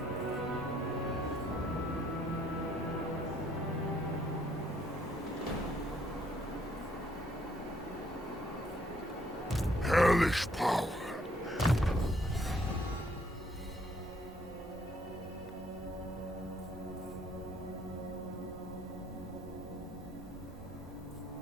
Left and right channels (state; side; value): normal; both; correlation 0.66